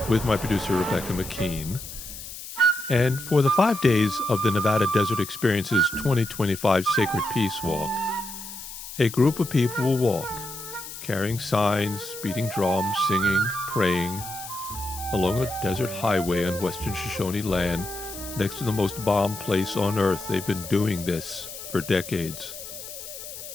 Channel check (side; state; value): left; noise; hiss, 11 dB below the sound